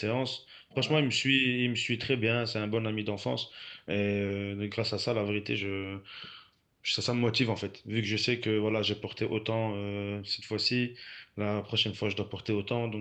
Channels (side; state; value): both; identical; correlation 1.00